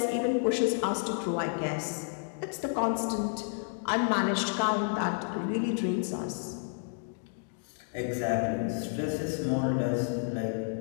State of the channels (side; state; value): right; silent; 57 dB below the other